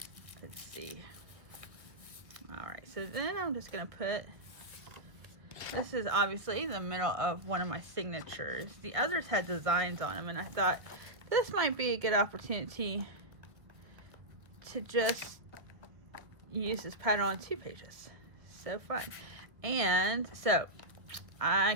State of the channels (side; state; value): left; late; 1.4 ms